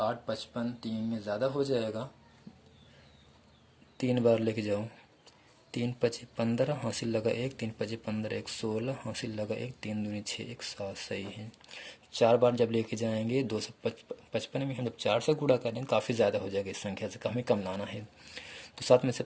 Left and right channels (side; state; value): both; identical; correlation 1.00